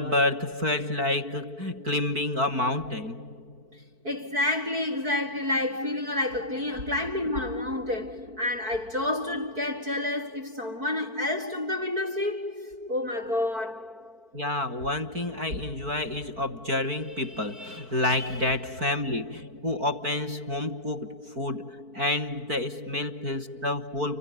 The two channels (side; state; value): left; late; 4.5 ms